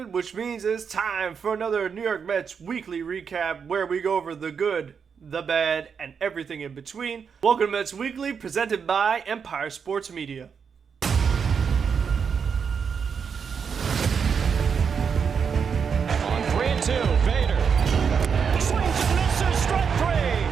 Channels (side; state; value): left; quieter; 6.5 dB